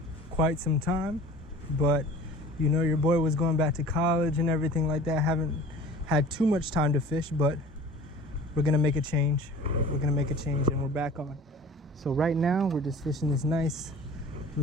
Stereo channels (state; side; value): normal; both; correlation 0.44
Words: quite some time, but you know your boy was going back to college and everything like that. Haven't had too much time to fish, but we're gonna make a change. We're gonna make a change and we're back on. So right now we're just fishing this nice